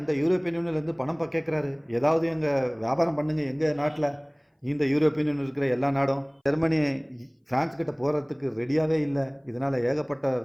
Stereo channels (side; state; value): both; identical; correlation 1.00